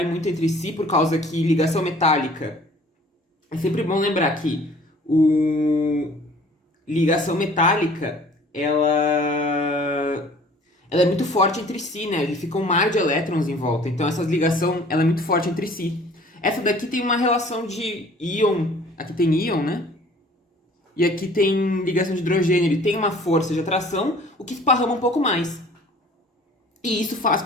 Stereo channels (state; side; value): normal; both; correlation 0.51